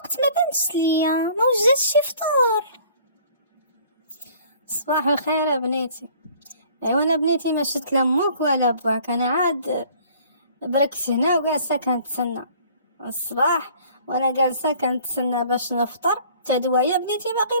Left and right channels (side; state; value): both; inverted; correlation -0.53